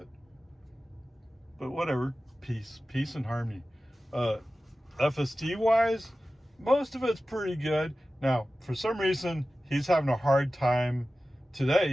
But whatever, peace and harmony. FSD wise, most of it's pretty good. Now, for some reason, he's having a hard time today.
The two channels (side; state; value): both; normal; correlation 0.95